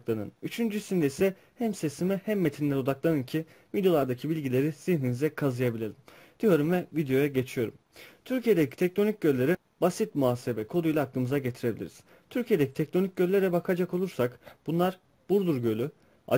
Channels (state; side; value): identical; both; correlation 1.00